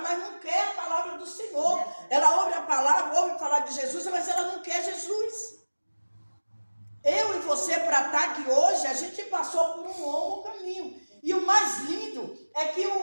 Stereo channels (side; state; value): both; inverted; correlation -1.00